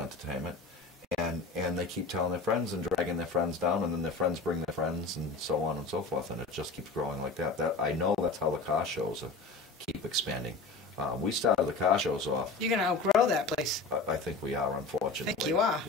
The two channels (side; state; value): right; quieter; 3.8 dB